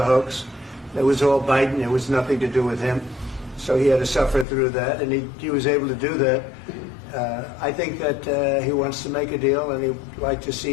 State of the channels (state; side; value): drops out; right; at 4.5 s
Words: hoax. It was all Biden. It was nothing to do with him. So he had to suffer through that, and he was able to do that. I think that he wants to make a deal, and he'd like to